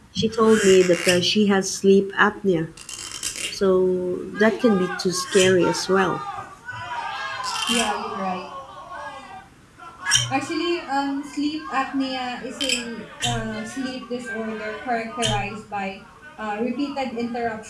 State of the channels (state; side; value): identical; both; correlation 1.00